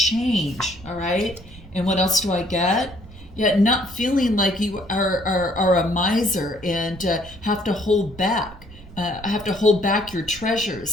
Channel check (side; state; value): right; noise; rumble, 19 dB below the sound